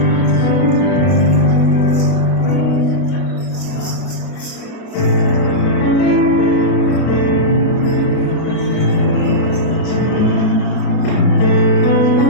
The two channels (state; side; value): late; right; 32 ms